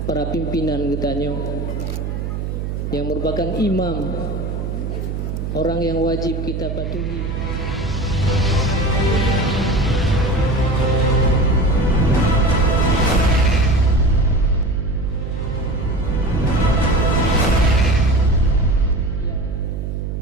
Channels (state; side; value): noise; right; hum, 4 dB below the sound